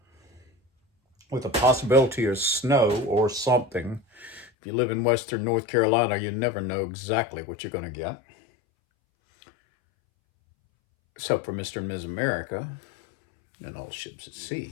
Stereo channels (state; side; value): drops out; right; at 4.5 s